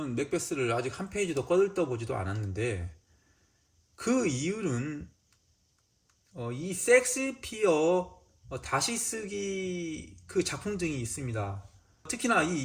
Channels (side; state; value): both; identical; correlation 1.00